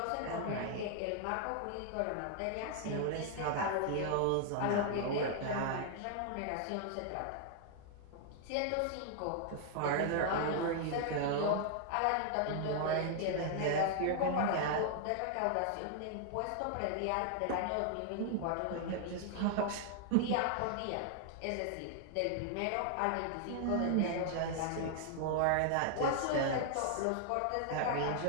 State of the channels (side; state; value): both; different; correlation 0.00